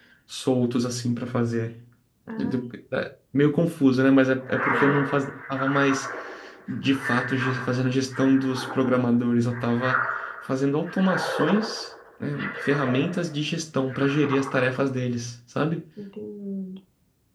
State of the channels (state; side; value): identical; both; correlation 1.00